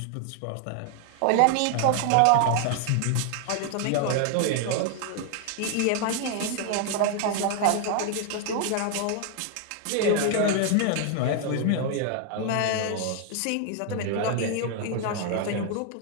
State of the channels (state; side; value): different; both; correlation 0.00